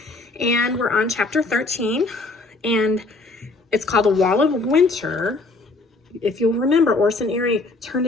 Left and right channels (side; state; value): right; quieter; 3.4 dB